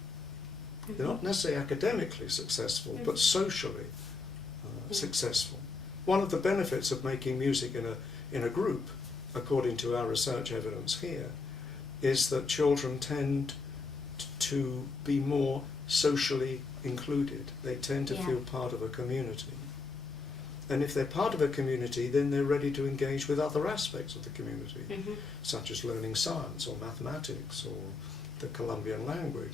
They're not necessarily academically successful, but socially successful. One of the benefits of making music in a group, according to our research evidence here, is that children tend to be more socially included. They tend to feel part of a community. And if they're part of a community, then they're ready to engage with other aspects of the community, such as learning science or mathematics or the Colombian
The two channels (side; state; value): right; quieter; 4.2 dB